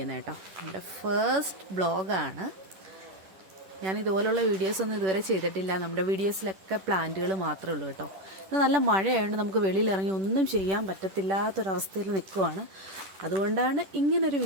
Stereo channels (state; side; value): late; left; 10 ms